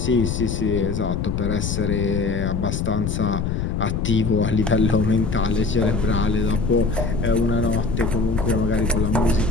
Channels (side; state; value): left; noise; rumble, 2 dB below the sound